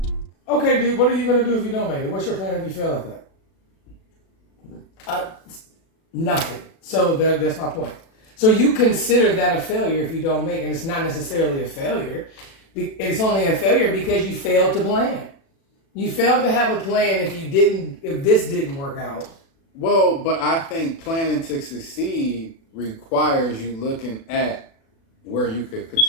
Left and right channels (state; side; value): late; right; 36 ms